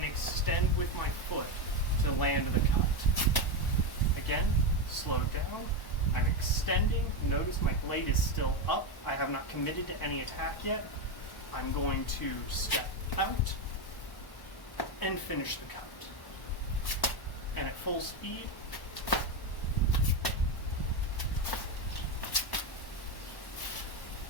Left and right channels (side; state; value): right; late; 1.1 ms